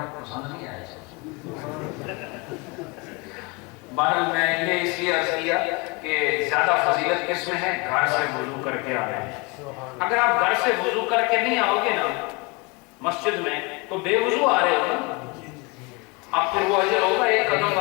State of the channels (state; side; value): quieter; right; 27.6 dB